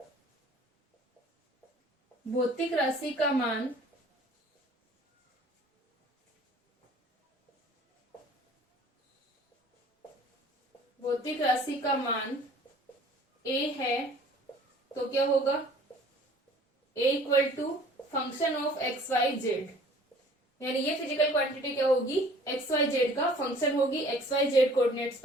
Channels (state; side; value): normal; both; correlation 0.51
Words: भौतिक राशि का मान a है, तो क्या होगा, a equal to function of x Y z, यानी ये फिजिकल क्वांटिटी क्या होगी, एक्स वाई जेड का फंक्शन होगी, एक्स वाई जेड कोऑर्डिनेट्स